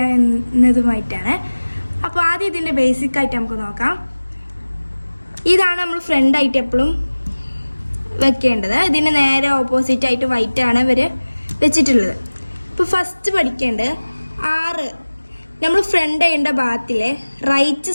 എന്നതുമായിട്ടാണ്. അപ്പോൾ ആദ്യം ഇതിൻ്റെ ബേസിക് ആയിട്ട് നമുക്ക് നോക്കാം. ഇതാണ് നമ്മൾ ഫ്രണ്ടായിട്ട് എപ്പോഴും വെക്കേണ്ടത്. ഇതിന് നേരെ ഓപ്പോസിറ്റ് ആയിട്ട് വൈറ്റാണ് ഇവർ വെച്ചിട്ടുള്ളത്. ഇപ്പോൾ ഫസ്റ്റ് പഠിക്കേണ്ടത് 6 നമ്മൾ ഫ്രണ്ട് ചെയ്യേണ്ട ഭാഗത്തിലെ റൈറ്റ്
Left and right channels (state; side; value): inverted; both; correlation -1.00